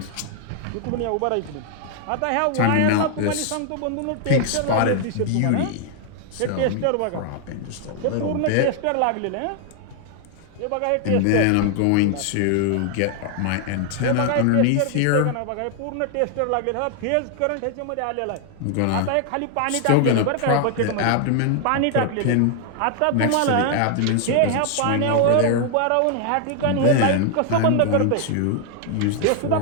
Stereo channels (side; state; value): both; different; correlation 0.00